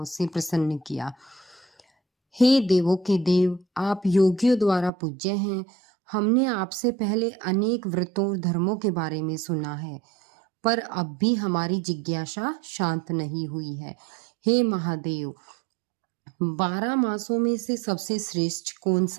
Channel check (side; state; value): left; drops out; at 4.9 s